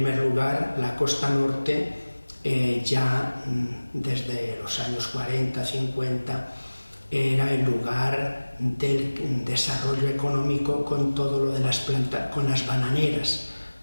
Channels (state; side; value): inverted; both; correlation -1.00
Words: lugar, la costa norte ya desde los años 40, 50 era el lugar del desarrollo económico con todo lo de con las bananeras,